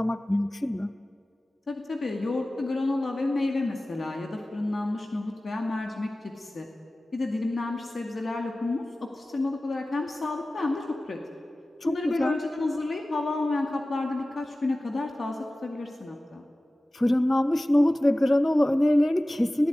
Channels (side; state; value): both; normal; correlation 0.97